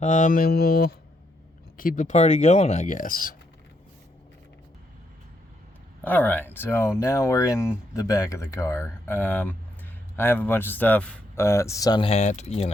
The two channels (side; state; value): both; normal; correlation 0.77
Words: And we'll keep the party going, I guess. Alright, so now we're in the back of the car. I have a bunch of stuff. Sun hat, you